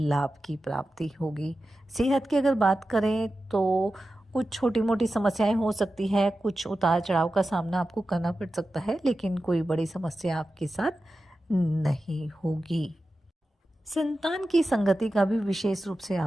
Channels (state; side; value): normal; both; correlation 0.93